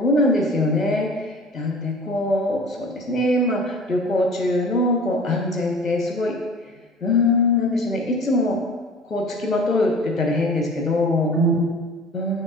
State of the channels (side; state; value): both; normal; correlation 0.43